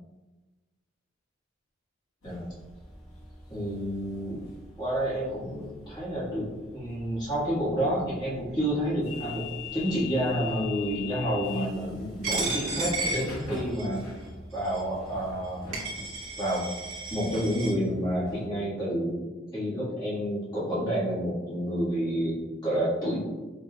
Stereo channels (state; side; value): normal; both; correlation 0.54